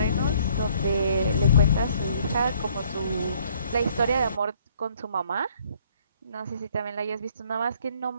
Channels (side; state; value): both; inverted; correlation -0.62